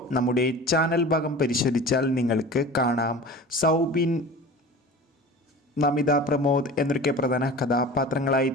നമ്മുടെ ചാനൽ ഭാഗം പരിശോധിച്ചാൽ നിങ്ങൾക്ക് കാണാം. സൗബിൻ, നമിത പ്രമോദ് എന്നൊക്കെ പ്രധാന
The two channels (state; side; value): normal; both; correlation 0.37